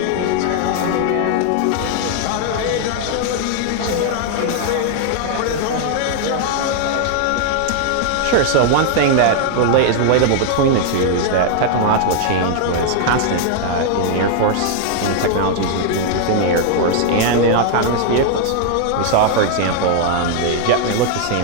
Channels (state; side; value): different; both; correlation 0.00